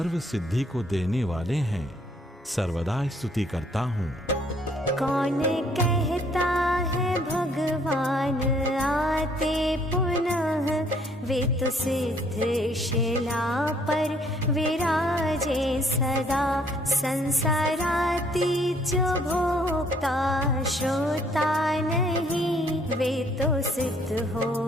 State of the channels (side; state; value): both; normal; correlation 0.64